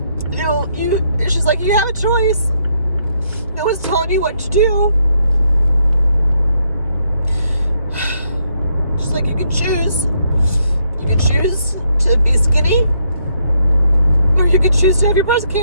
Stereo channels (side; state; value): both; inverted; correlation -0.74